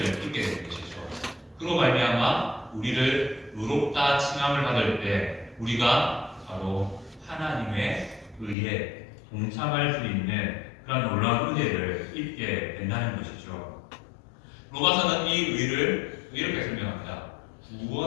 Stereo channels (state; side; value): drops out; right; at 8.6 s